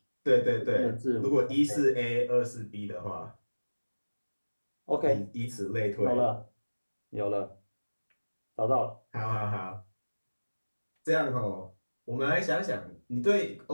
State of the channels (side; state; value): both; inverted; correlation -1.00